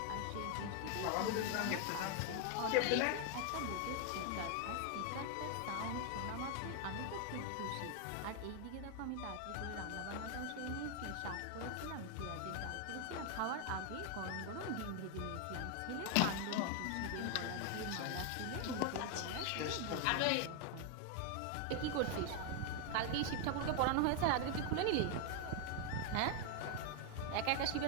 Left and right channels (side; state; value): both; different; correlation 0.00